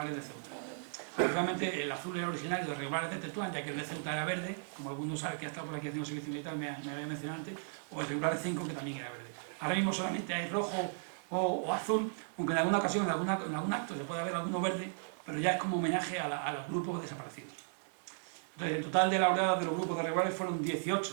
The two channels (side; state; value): left; silent; digital silence